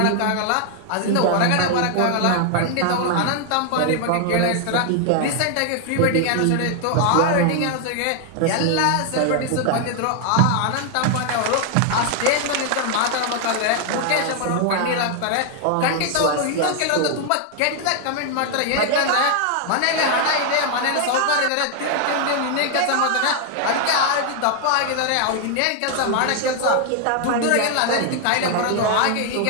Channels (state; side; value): different; both; correlation 0.00